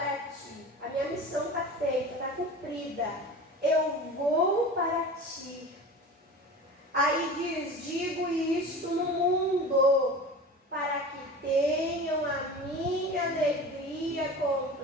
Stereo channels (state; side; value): normal; both; correlation 0.34